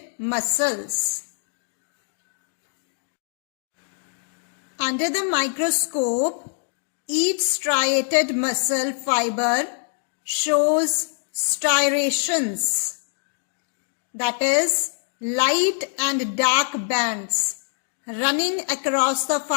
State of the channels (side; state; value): right; silent; digital silence